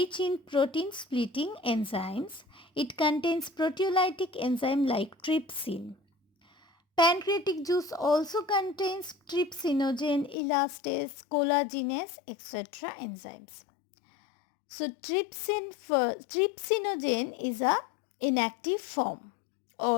in protein splitting enzymes. It contains proteolytic enzyme like trypsin. Pancreatic juice also contains trypsinogen, elastase, collagenase, etc. enzymes. So trypsinogen is a inactive form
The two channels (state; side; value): drops out; right; at 10.4 s